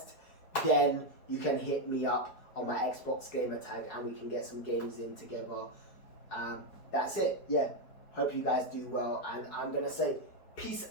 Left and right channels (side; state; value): right; late; 4.7 ms